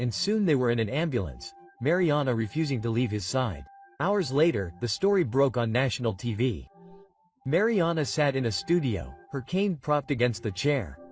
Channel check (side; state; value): both; identical; correlation 1.00